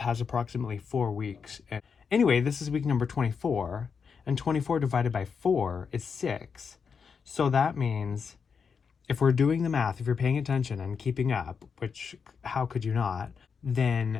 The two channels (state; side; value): quieter; right; 6.0 dB